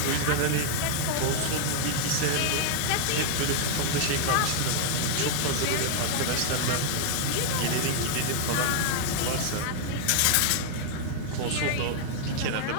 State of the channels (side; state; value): both; different; correlation 0.00